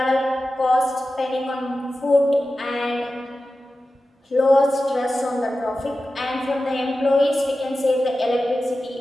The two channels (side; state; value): both; normal; correlation 0.94